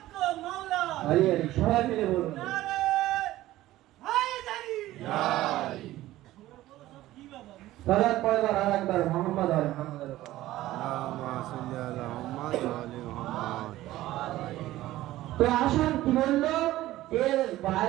मौला আরে আরে সবাই মিলে বলুন, नारे हैदरी সালাত পড়বার আর একবার মুহাম্মদ আর মুহাম্মাদের উপর। اللهم صل على محمد وعلى محمد তো আসুন কি বললো, এর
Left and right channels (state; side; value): quieter; left; 15.7 dB